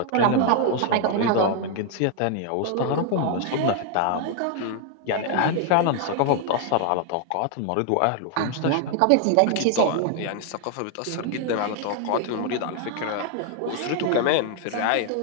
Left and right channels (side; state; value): both; different; correlation 0.00